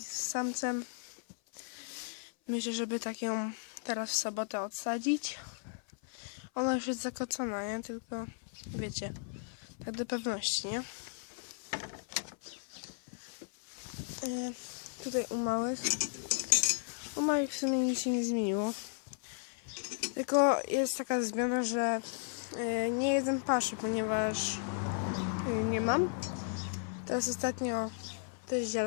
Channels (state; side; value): silent; right; 54 dB below the other